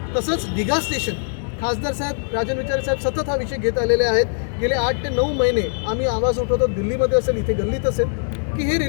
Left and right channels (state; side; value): silent; right; digital silence